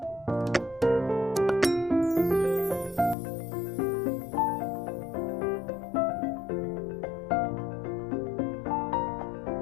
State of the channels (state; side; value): drops out; right; at 3.2 s